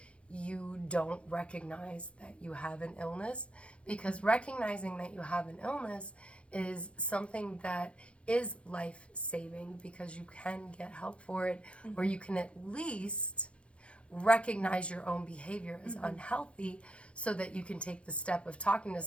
you don't recognize that you have an illness, because recognizing that you have an illness is something that is life-saving, because you can get help for it, or you can at least recognize your own behavior as unhealthy, so that you can take the step of talking to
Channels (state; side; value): late; right; 0.060 ms